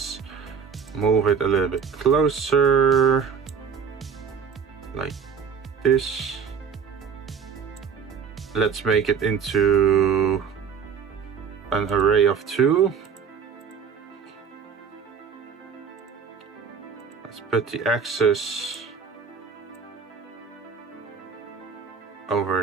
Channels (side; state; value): left; quieter; 6.5 dB